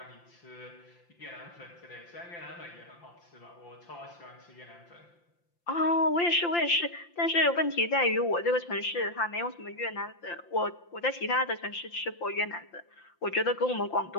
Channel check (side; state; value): right; late; 5.8 ms